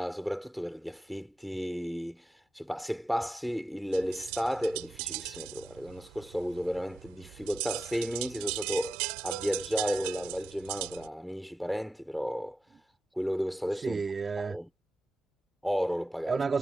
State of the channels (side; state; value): both; normal; correlation 0.89